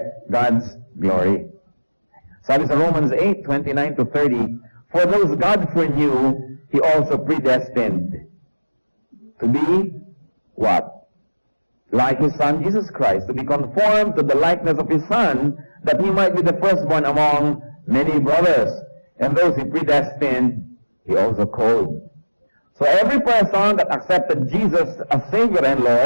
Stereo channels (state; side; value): inverted; both; correlation -1.00